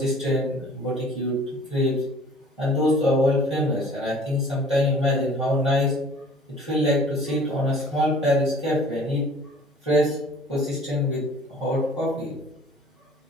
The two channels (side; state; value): both; normal; correlation 0.50